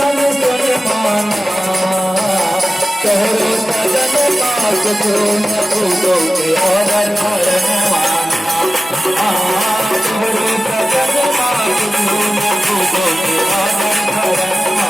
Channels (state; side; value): normal; both; correlation 0.96